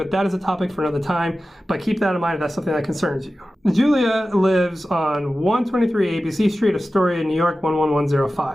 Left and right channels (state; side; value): normal; both; correlation 0.95